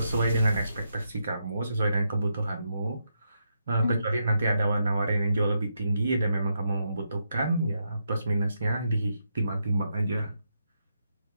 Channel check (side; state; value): both; inverted; correlation -0.81